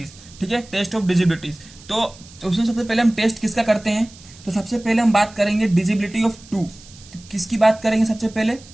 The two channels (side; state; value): right; noise; hiss, 22 dB below the sound